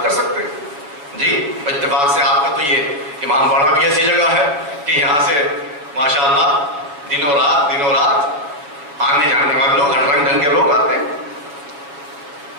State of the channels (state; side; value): late; left; 7.0 ms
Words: کر سکتے ہیں جی۔ اتفاق سے آپ کا تو یہ امام باڑہ بھی ایسی جگہ ہے کہ یہاں سے ماشاءاللہ دنوں رات آنے جانے والے لوگ، ہر رنگ ڈھنگ کے لوگ آتے ہیں۔